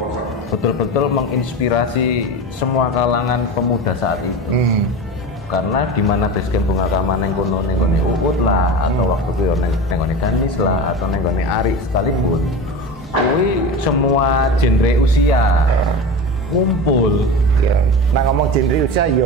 betul-betul menginspirasi semua kalangan pemuda saat itu. Karena di mana basecamp Bunga Kama nengkono Uut lah, atau waktu itu nengkono Ganis lah, atau nengkono Ari sekalipun, kui semua genre usia ngumpul. Nah ngomong genre usia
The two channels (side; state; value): both; normal; correlation 0.28